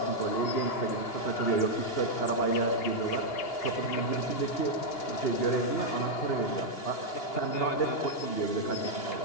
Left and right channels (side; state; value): right; late; 2.8 ms